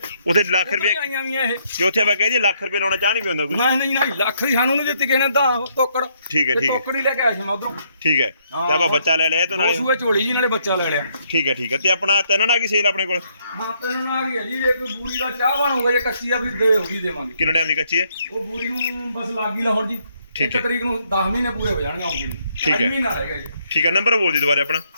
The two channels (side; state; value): both; inverted; correlation -0.72